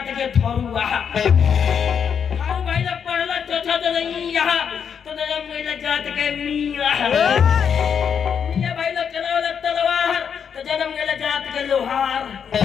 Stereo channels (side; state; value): right; quieter; 7.3 dB